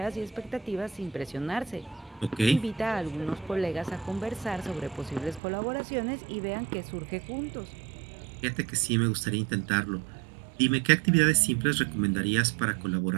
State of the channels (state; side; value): drops out; left; at 5.4 s